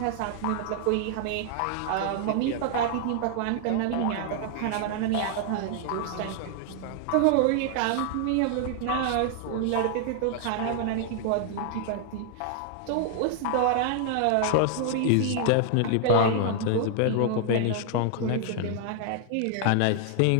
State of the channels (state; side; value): different; both; correlation 0.00